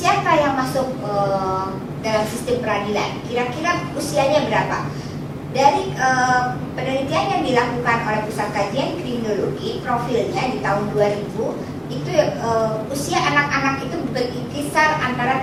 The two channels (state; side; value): identical; both; correlation 1.00